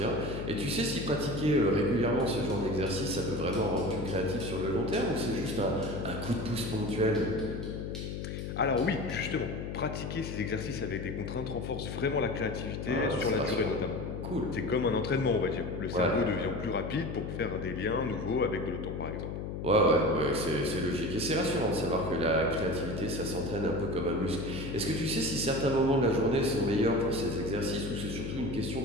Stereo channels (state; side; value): noise; left; hum, 5 dB below the sound